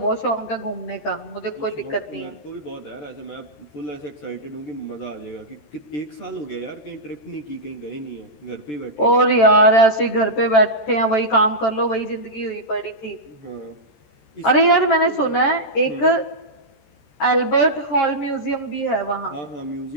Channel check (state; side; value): late; right; 14 ms